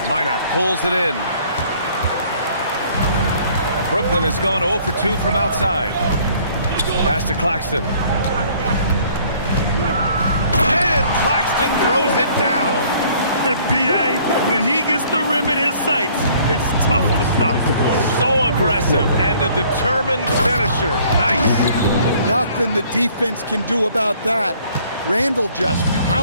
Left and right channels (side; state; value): both; inverted; correlation -0.58